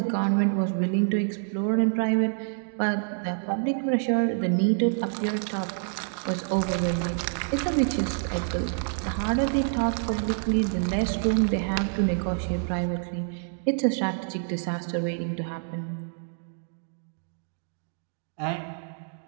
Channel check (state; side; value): silent; left; digital silence